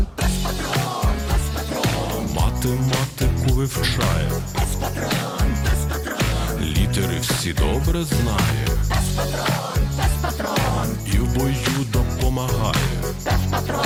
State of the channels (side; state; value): both; identical; correlation 1.00